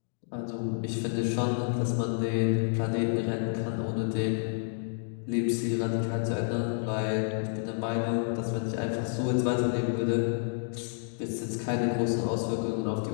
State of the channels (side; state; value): right; silent; digital silence